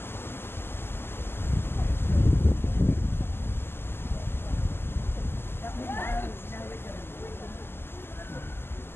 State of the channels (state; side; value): late; right; 0.11 ms